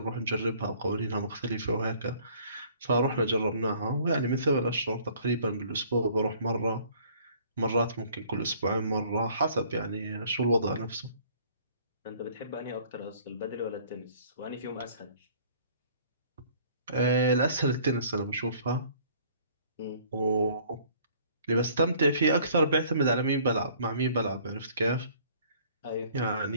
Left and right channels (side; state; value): both; inverted; correlation -0.56